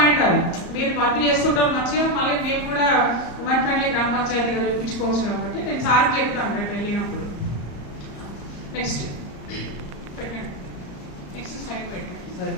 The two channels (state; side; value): late; right; 34 ms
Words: అది, మీరు వర్క్ చేస్తుంటారు మంచిగా, మళ్ళీ మేము కూడా ఉమెన్ ఫ్రెండ్లీ గ్రామ పంచాయతీగా చూపించుకోవచ్చు కాబట్టి నేను సార్కి చెప్తాను రేపు వెళ్ళినప్పుడు. నెక్స్ట్ పెట్టండి, నెక్స్ట్ స్లైడ్